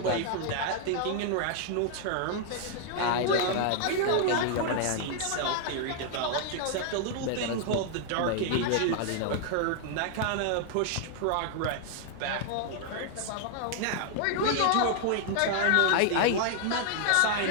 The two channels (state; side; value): different; both; correlation 0.00